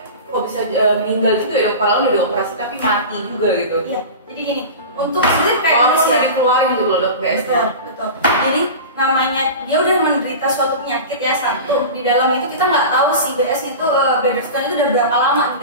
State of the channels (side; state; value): both; inverted; correlation -0.31